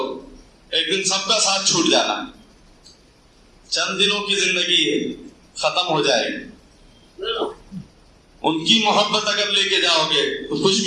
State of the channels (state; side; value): identical; both; correlation 1.00